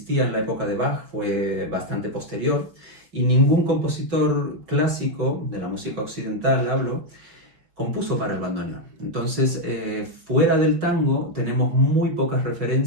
en la época de Bach, fue bastante posterior, y ningún compositor clásico de la música occidental, hablo, compuso para el bandoneón. Entonces, fuera del tango, tenemos muy pocas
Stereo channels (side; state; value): left; late; 5.4 ms